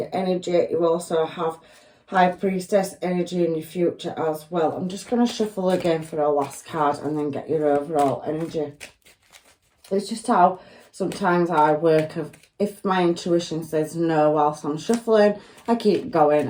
energy. You also have High Priestess energy in your future as well. I'm just going to shuffle again for a last card and then get your overall energy. It's just how sometimes I work. If my intuition says no whilst I'm shuffling, I keep going.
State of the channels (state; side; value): identical; both; correlation 1.00